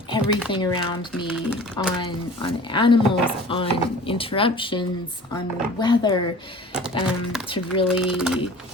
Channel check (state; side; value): normal; both; correlation 0.43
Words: everything around me, on animals, on interruptions, on weather, to really